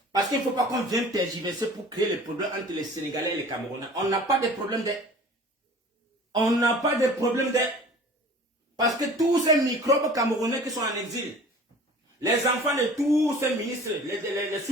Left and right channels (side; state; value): both; normal; correlation 0.44